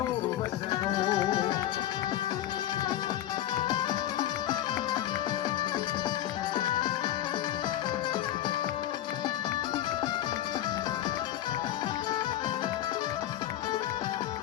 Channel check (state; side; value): quieter; right; 12.4 dB